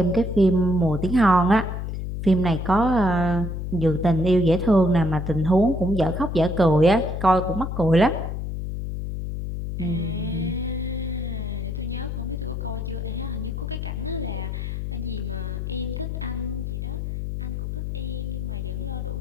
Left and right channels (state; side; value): noise; left; hum, 4 dB below the sound